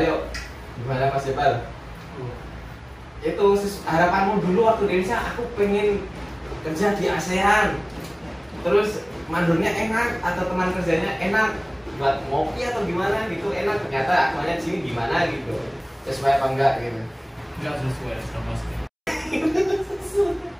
yuk. Gimana Mas Jepal? Itu harapanmu dulu waktu di Indonesia, aku pengen kerja di ASEAN. Terus mandornya enak atau teman kerjanya enak, buat ngopi atau gimana gitu enak, ternyata aktualnya di sini gimana gitu. Sesuai apa enggak gitu? Enggak sesuai sama sekali.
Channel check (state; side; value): identical; both; correlation 1.00